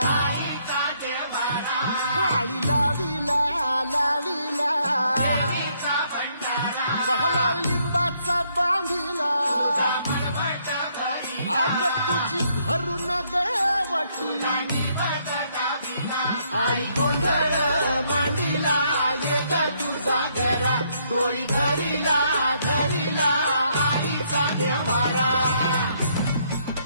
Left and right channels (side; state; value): both; inverted; correlation -0.71